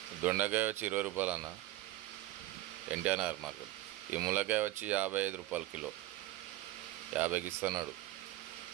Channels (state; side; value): quieter; left; 16.8 dB